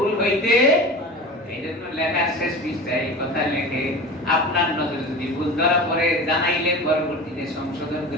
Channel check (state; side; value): normal; both; correlation 0.33